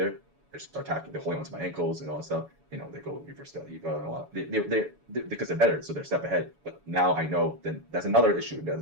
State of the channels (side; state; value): left; late; 7.1 ms